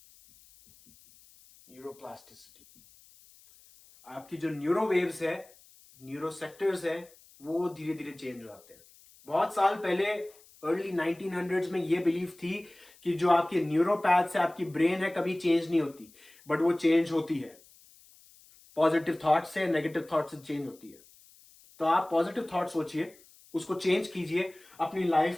न्यूरोप्लास्टिसिटी, आपकी जो न्यूरो वेव्स है, न्यूरो सेक्टर्स है, वो धीरे धीरे चेंज हो जाते हैं। बहुत साल पहले अर्ली 1900s में ये बिलीफ थी कि जो आपके न्यूरोपैथ्स है, आपकी ब्रेन है, कभी चेंज नहीं होती। बट वो चेंज होती है। पॉजिटिव थॉट से, नेगेटिव थॉट से चेंज होती है। तो आप पॉजिटिव थॉट सोचिए, उसको चेंज कीजिए, अपनी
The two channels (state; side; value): noise; left; hiss, 26 dB below the sound